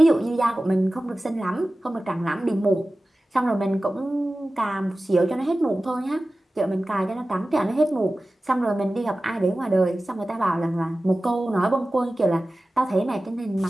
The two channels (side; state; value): both; normal; correlation 0.96